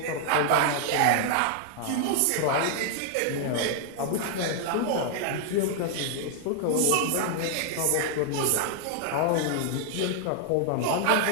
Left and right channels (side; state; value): both; different; correlation 0.00